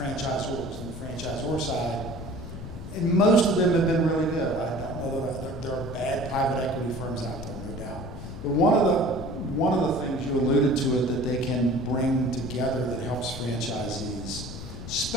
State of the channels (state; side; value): noise; left; rumble, 10 dB below the sound